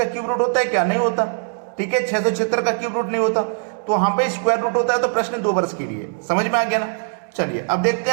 क्यूब रूट होता है क्या, नहीं होता। ठीक है, 676 का क्यूब रूट नहीं होता, तो वहां पे स्क्वायर रूट होता है। तो प्रश्न 2 वर्ष के लिए, समझ में आ गया ना। चलिए अब देखते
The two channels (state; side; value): silent; left; digital silence